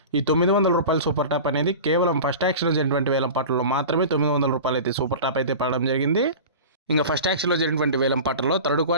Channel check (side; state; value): both; inverted; correlation -0.34